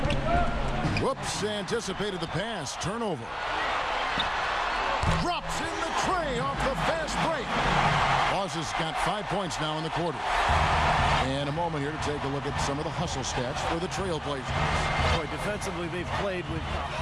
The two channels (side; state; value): both; identical; correlation 1.00